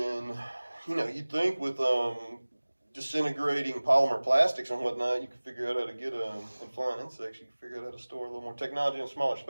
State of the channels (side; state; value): both; inverted; correlation -1.00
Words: you'd think with disintegrating polymer plastics and whatnot, you could figure out how to get and flying insects. You could figure out how to store a little more technology in a smaller